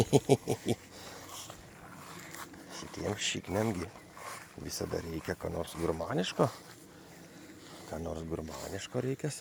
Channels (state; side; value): identical; both; correlation 1.00